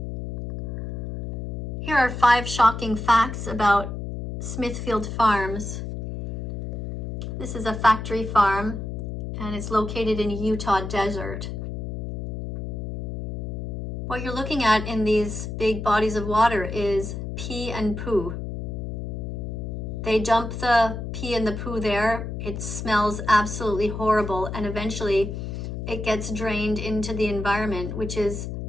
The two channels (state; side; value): noise; left; hum, 6 dB below the sound